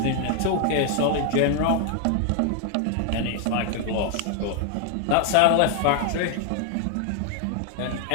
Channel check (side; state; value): both; different; correlation 0.00